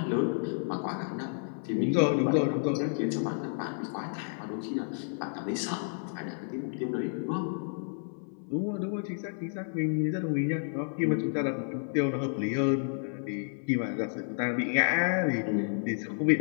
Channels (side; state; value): right; silent; 57 dB below the other